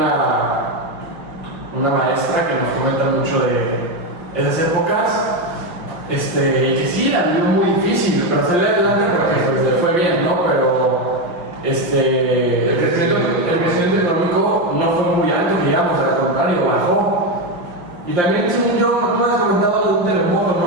una maestra que nos comenta mucho de esas épocas, y que sí, la vivió muy difícil, pero salió adelante porque pues, le fue bien, ¿no? Pero el crecimiento económico no fue muy alto, digamos, al contrario, bajó. Y también, según yo, tú me has comentado de un terremoto,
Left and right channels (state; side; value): late; left; 5.7 ms